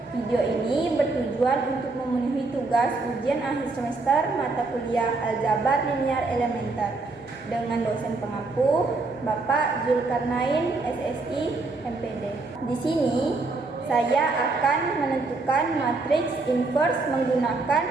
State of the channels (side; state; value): left; quieter; 3.6 dB